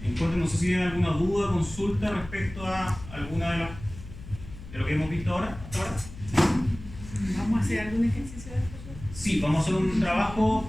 cuenta, no sé si tienen alguna duda, consulta respecto a alguna de lo que hemos visto ahora, hasta ahora. ¿Vamos a hacer algún ejercicio de esto? Sí, vamos a hacer un trabajo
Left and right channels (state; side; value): noise; left; hum, 14 dB below the sound